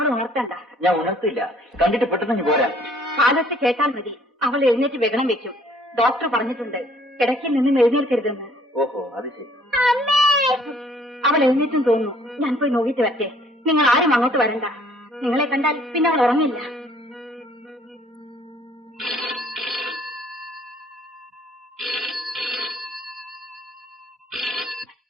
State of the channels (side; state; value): both; normal; correlation 0.59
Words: ഉണർത്തണ്ട. ഞാൻ ഉണർത്തില്ല, കണ്ടിട്ട് പെട്ടെന്ന് പോരാ. കാലത്ത് കേട്ടാൽ മതി. അവൾ എഴുന്നേറ്റ് വെഗണം വെക്കും. ഡോക്ടർ പറഞ്ഞിട്ടുണ്ട് കിടക്കിൽ നിന്നും എഴുന്നേൽക്കരുതെന്ന്. ഓഹോ, അത് ശരി. അവൾ എഴുന്നേറ്റും തോന്നുന്നു. ഞാൻ പോയി നോക്കിയിട്ട് വരട്ടെ. നിങ്ങൾ ആരും അങ്ങോട്ട് വരണ്ട. നിങ്ങളെ കണ്ടാൽ പിന്നെ അവൾ ഉറങ്ങില്ല.